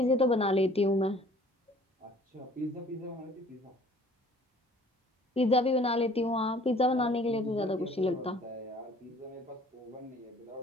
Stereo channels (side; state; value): both; normal; correlation 0.53